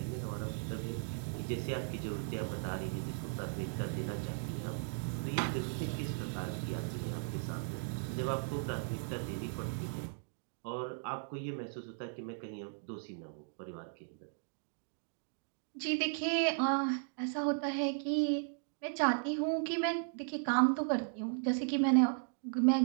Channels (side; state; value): left; silent; digital silence